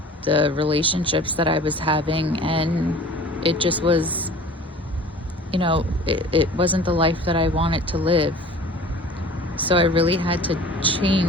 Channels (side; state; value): both; normal; correlation 0.44